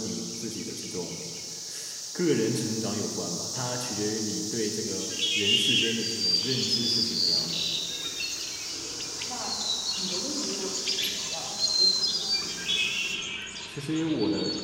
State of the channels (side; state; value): both; identical; correlation 1.00